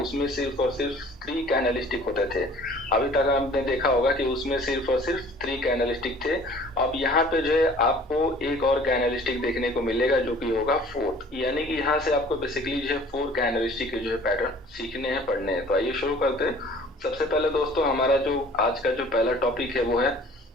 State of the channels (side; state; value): both; normal; correlation 0.50